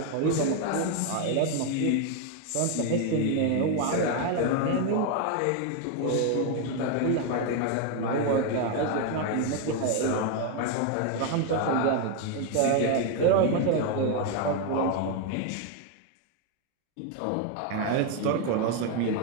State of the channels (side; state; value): both; different; correlation 0.01